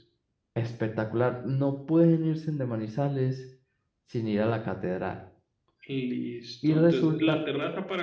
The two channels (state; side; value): identical; both; correlation 1.00